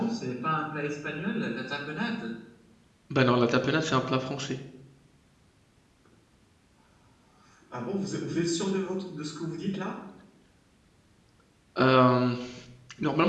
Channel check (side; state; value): both; identical; correlation 1.00